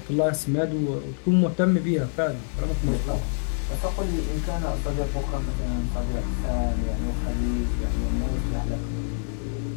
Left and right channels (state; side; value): silent; right; digital silence